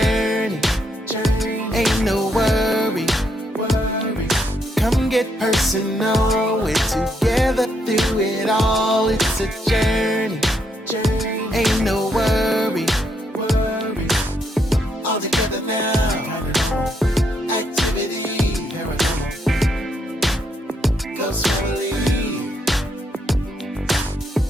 ain't no worry. Come get personal, we're together through it all. It's a journey, ain't no worry. All together now, activity, Ghost family.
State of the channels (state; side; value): normal; both; correlation 0.76